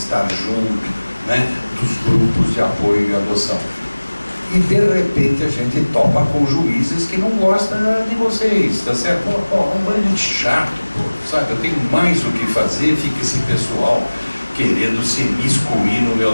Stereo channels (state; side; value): inverted; both; correlation -1.00